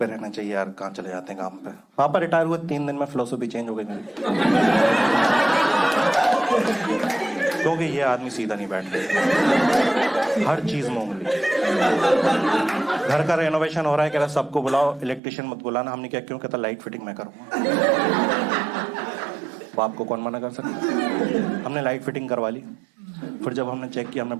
रहना चाहिए यार, कहाँ चले जाते हैं काम पे। पापा रिटायर हुए 3 दिन में फिलोसफी चेंज हो गई मेरी। क्योंकि ये आदमी सीधा नहीं बैठता, हर चीज में उंगली। घर का रेनोवेशन हो रहा है, कह रहा सबको बुलाओ, इलेक्ट्रिशियन मत बुलाना। हमने क्या, क्यों? कहता लाइट फिटिंग मैं करूंगा। बाप को कौन मना कर सकता। हमने लाइट फिटिंग करवा ली। फिर जब हमने चेक किया, हमने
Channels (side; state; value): left; drops out; at 15.2 s